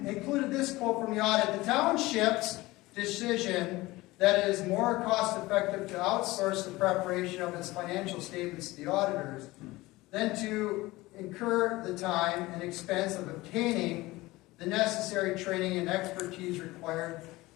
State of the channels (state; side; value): quieter; right; 19.8 dB